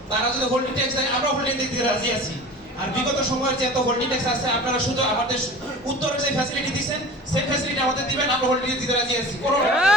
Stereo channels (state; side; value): normal; both; correlation 0.38